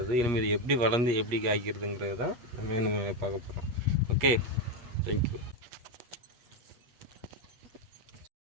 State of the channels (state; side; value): late; left; 8.4 ms